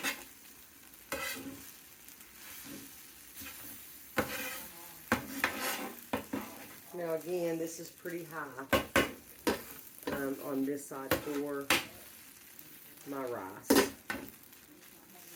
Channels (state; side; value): identical; both; correlation 1.00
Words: Now again, this is pretty high on this side for my rice.